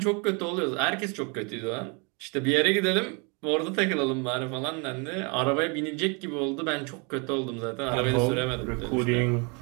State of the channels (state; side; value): quieter; left; 32.7 dB